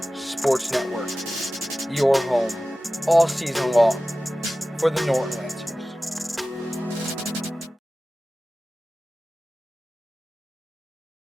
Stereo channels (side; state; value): both; normal; correlation 0.96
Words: Sports Network, your home all season long for the Norton Lancers.